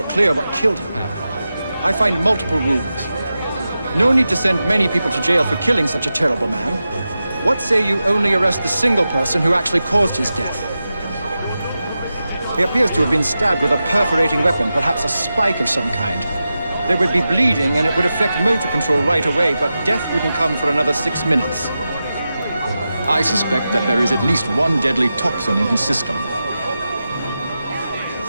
clear what killed him. I find multiple wounds. No need to send many people to jail for killing such a terrible man. What say you only arrest the single person who actually caused his death? He appears to have been stabbed with a perforating weapon, perhaps a spike of some kind. There would be bleeding and it would affect motor control right away, but death wouldn't come for another 6 minutes. I suspect that there is at least one deadly toxin in his system.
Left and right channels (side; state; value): both; inverted; correlation -0.92